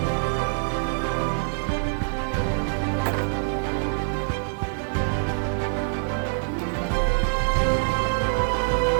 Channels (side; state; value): left; silent; 62 dB below the other